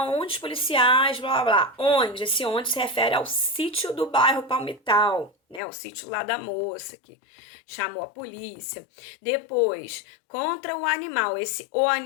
onde os policiais, blá blá blá. Onde? Esse onde se refere ao sítio do bairro Palmital, né? O sítio lá da moça que chamou a polícia. Depois, contra o animal. Esse o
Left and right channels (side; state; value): right; drops out; at 5.6 s